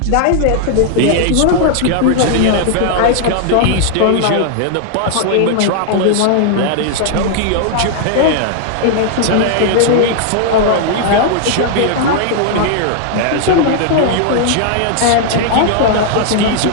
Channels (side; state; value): both; different; correlation 0.00